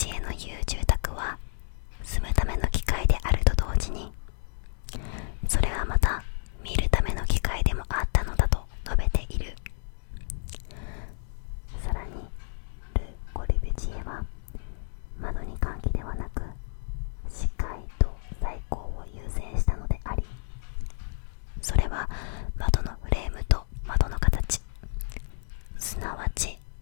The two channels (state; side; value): silent; right; digital silence